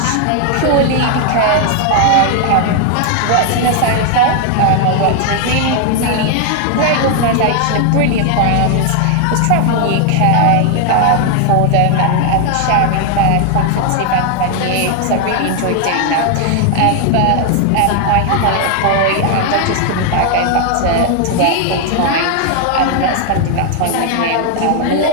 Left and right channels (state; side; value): different; both; correlation 0.00